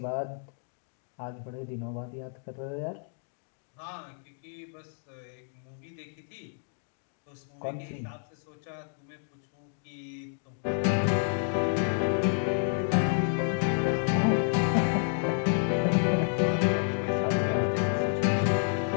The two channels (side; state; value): right; silent; digital silence